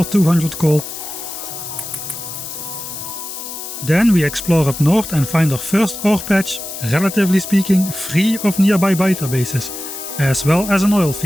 200 coal. Then we explore up north and find our first ore patch, relatively speaking, free of nearby biter bases, as well as an oil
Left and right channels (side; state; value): left; noise; hiss, 9 dB below the sound